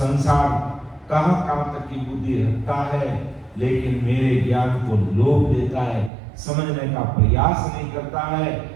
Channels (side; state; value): left; drops out; at 6.1 s